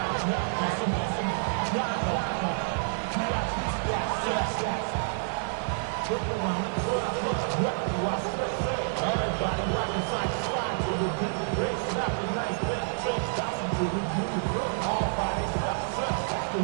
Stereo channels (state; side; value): silent; left; 59 dB below the other